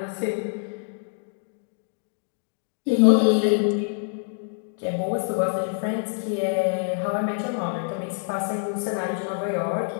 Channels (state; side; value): silent; right; digital silence